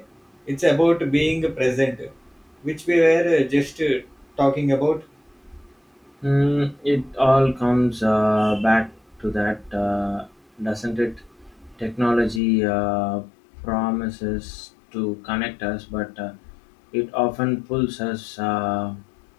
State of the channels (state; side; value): drops out; right; at 12.4 s